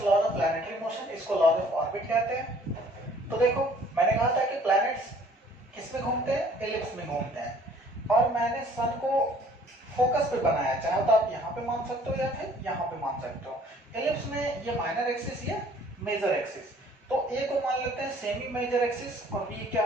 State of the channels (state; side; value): normal; both; correlation 0.56